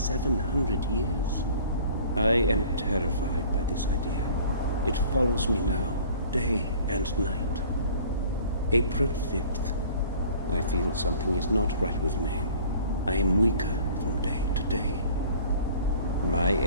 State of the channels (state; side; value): inverted; both; correlation -0.49